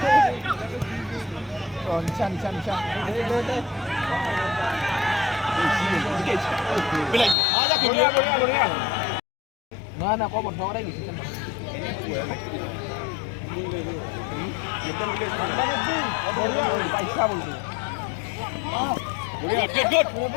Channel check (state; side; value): drops out; right; at 7.4 s